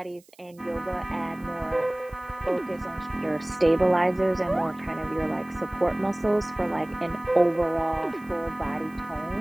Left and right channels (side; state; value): right; noise; hiss, 29 dB below the sound